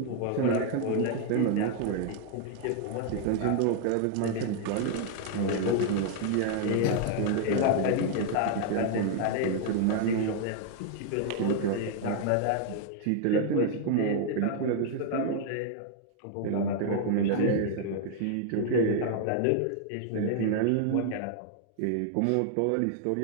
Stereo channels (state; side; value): different; both; correlation 0.00